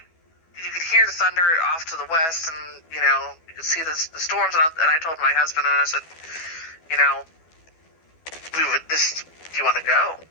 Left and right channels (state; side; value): late; right; 12 ms